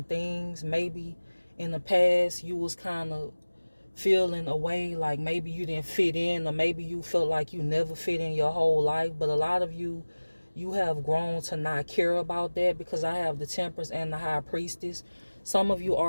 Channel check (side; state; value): both; inverted; correlation -1.00